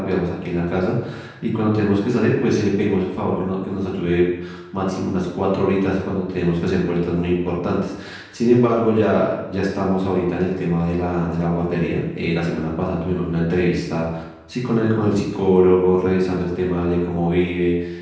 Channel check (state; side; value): identical; both; correlation 1.00